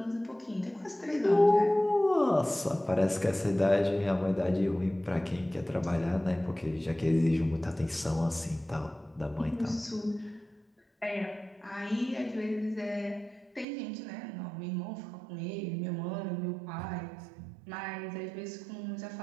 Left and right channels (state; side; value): drops out; left; at 13.7 s